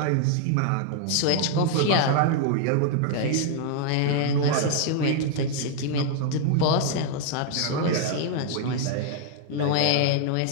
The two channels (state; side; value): different; both; correlation 0.00